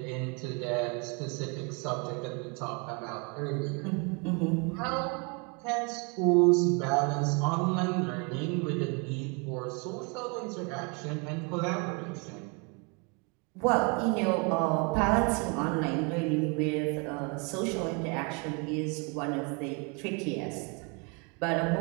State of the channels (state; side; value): quieter; left; 32.6 dB